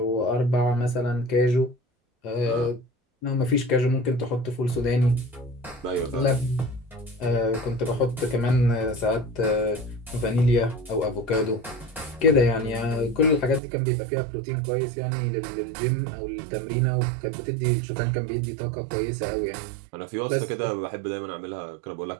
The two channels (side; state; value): left; drops out; at 13.6 s